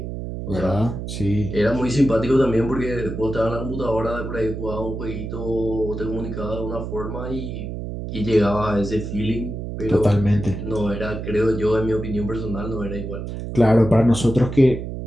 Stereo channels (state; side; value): noise; right; hum, 6 dB below the sound